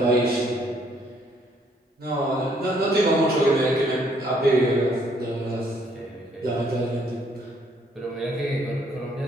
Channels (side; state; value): both; normal; correlation 0.67